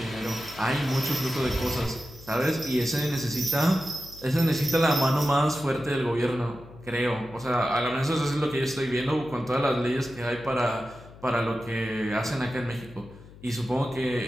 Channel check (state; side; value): noise; left; hum, 20 dB below the sound